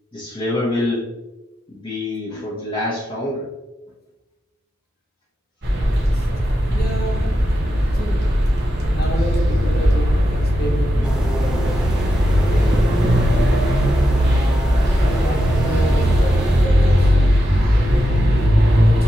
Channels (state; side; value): normal; both; correlation 0.88